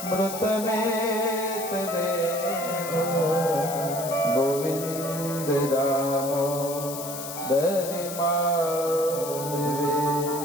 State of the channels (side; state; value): left; noise; hiss, 9 dB below the sound